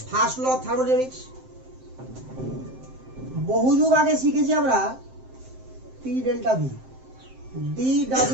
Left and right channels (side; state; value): left; late; 7.7 ms